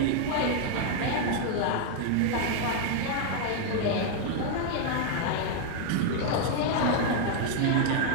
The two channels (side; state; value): both; different; correlation 0.00